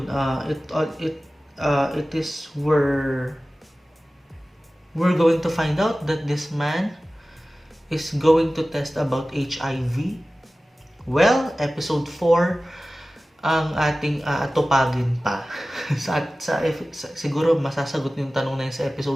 It is where we're going to find out that this man is going to test about HIV. Well, episode 4 ang ating atupagin pa. Siguro masasagot yung tanong na yun sa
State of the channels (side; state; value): both; normal; correlation 0.96